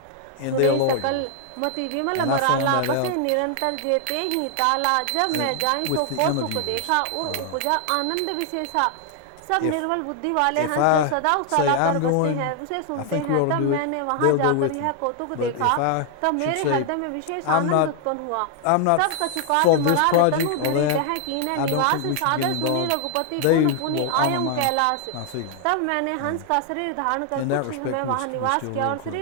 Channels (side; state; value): both; different; correlation 0.00